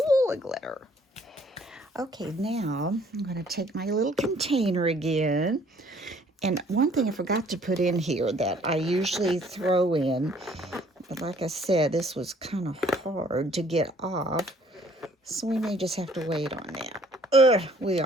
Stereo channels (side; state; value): both; normal; correlation 0.59